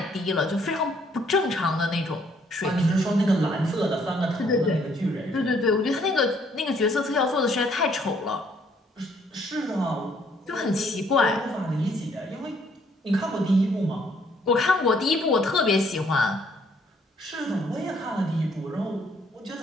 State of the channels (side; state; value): both; normal; correlation 0.66